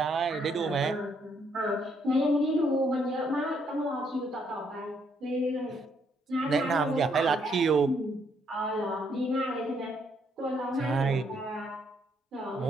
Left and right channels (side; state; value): both; normal; correlation 0.72